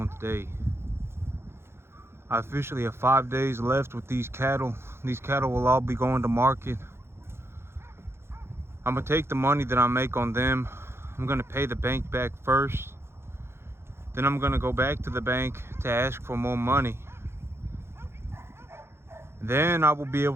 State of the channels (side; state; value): left; late; 0.12 ms